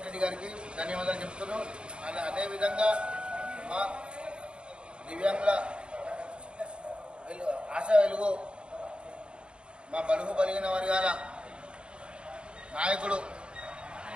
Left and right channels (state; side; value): late; left; 0.054 ms